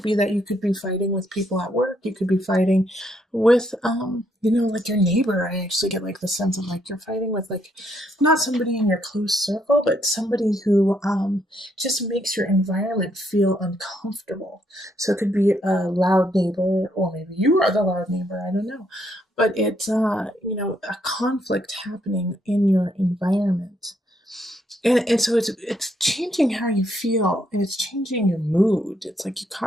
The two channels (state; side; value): normal; both; correlation 0.73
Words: be that you could be fighting with people at work. You could be fighting with, like your neighbor. I actually get like the sense of like you're fighting with like not somebody in your close circle, but somebody who just makes your environment feel uncomfortable. So it could be a loud neighbor, or maybe you are the loud neighbor. I don't know, but it's a conflict happening in your environment, and so it's changing how you feel, and it's changing your mood. It's like you